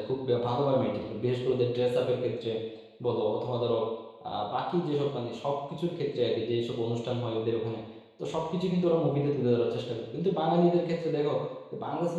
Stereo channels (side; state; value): both; identical; correlation 1.00